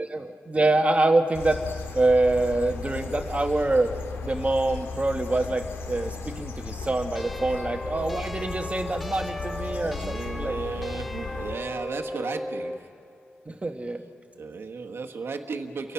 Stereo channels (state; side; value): normal; both; correlation 0.91